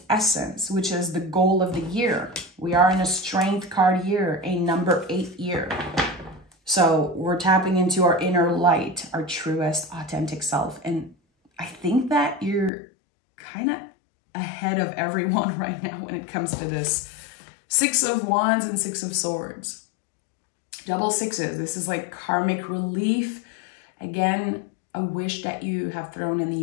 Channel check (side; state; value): right; drops out; at 12.7 s